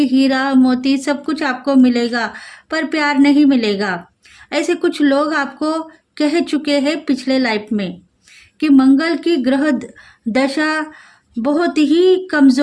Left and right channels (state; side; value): identical; both; correlation 1.00